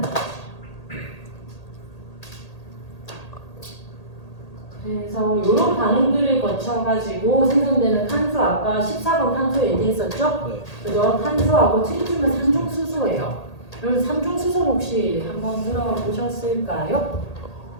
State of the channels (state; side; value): late; right; 1.8 ms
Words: 거죠. 그래서 이런 반응들을 거쳐가지고 생성되는 탄소, 아까 14번 탄소 얘기했었죠? 네. 그죠? 탄소하고 트리튬은 삼중수소예요. 여러분 삼중수소 혹시 한번 들어보셨을까요?